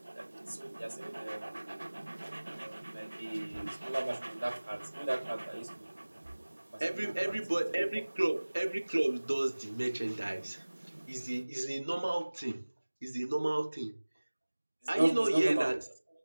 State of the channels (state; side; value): inverted; both; correlation -1.00